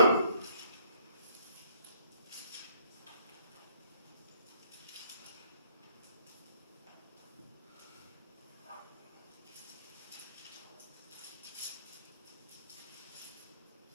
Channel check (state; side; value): inverted; both; correlation -0.64